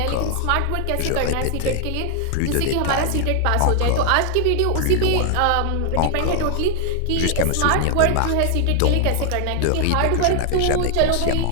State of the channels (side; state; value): both; different; correlation 0.00